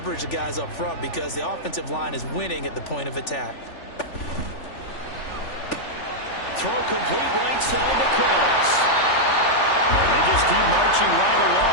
the guys up front because the offensive line is winning at the point of attack. Throw complete right side to Cooks. And they just keep marching right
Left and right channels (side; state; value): right; late; 3.4 ms